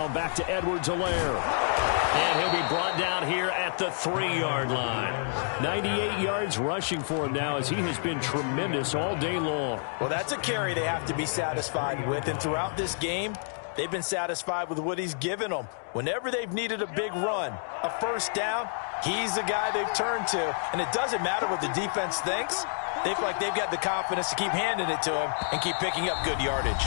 back to Edwards-Helaire. And he'll be brought down here at the 3-yard line. 98 yards rushing for him now as he has been tremendous all day long. Well, that's a carry they have to be satisfied with. And throughout this game, they've been satisfied with what he's given them. Whenever they've needed a big run, a first down, he's the guy they've turned to. And it doesn't matter what the defense thinks. They feel like they've got the confidence to keep handing it to him and keep picking up good yardage.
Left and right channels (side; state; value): right; silent; digital silence